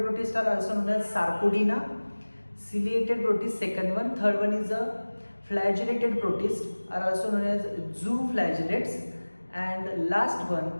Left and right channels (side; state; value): both; inverted; correlation -1.00